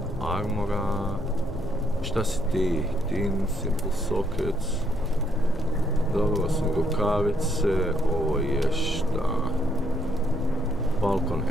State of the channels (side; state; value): both; normal; correlation 0.72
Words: armora. Šta si ti? Tin, simple sockets. Dobro, su rukavice. Ovo je šta? Falcon